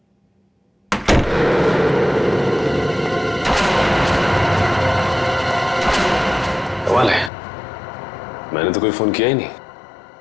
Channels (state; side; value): drops out; right; at 7.3 s